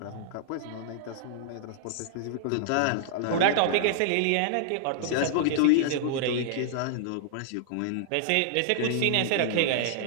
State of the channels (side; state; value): both; different; correlation -0.01